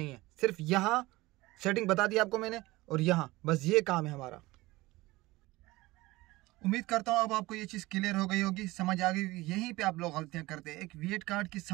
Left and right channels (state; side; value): quieter; left; 20.0 dB